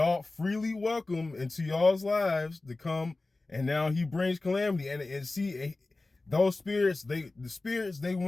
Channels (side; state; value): right; quieter; 3.2 dB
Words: freely welcome into y'all's lives to come, and now he brings calamity. And see, those spirits, they